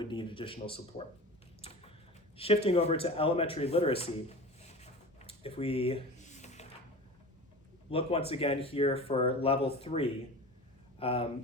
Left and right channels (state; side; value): normal; both; correlation 0.34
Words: need additional support. Shifting over to elementary literacy, if we look once again here for level 3,